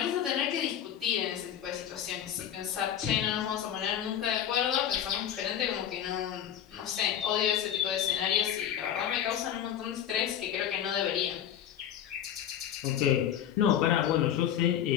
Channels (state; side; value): quieter; right; 10.0 dB